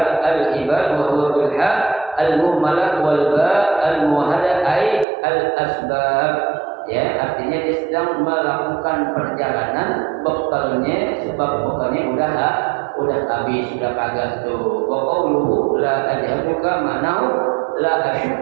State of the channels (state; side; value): drops out; left; at 5.1 s